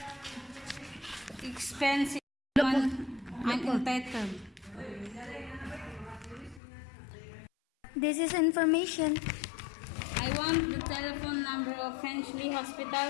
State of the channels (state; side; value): drops out; right; at 6.6 s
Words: expensive. I'm entitled. This is information. I want the telephone number of Finchley